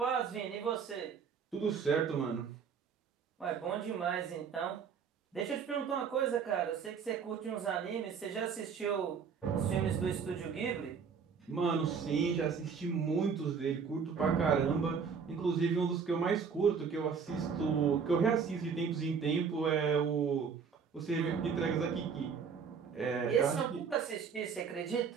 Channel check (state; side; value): quieter; left; 6.2 dB